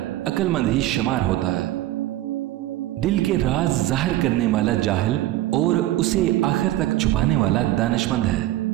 अक्लमंद ही शुमार होता है। दिल के राज जाहिर करने वाला जाहिल, और उसे आखिर तक छुपाने वाला दानिशमंद है।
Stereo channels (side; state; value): left; quieter; 15.4 dB